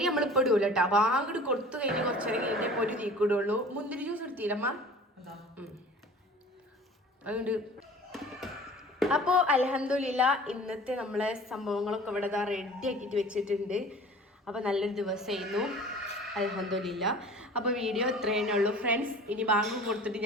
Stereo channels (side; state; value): both; normal; correlation 0.44